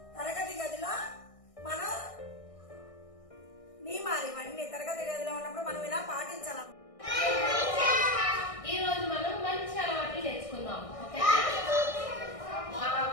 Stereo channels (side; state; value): right; late; 1.6 ms